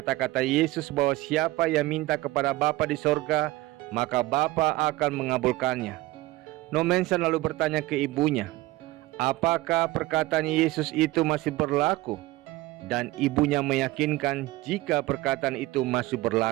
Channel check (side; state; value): left; quieter; 18.4 dB